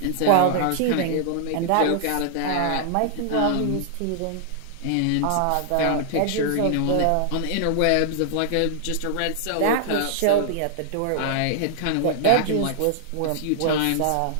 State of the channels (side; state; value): both; different; correlation -0.01